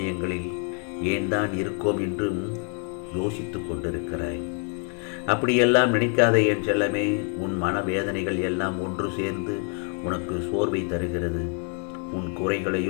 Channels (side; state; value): right; quieter; 36.6 dB